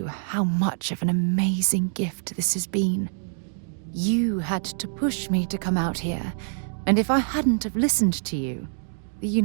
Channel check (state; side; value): silent; left; digital silence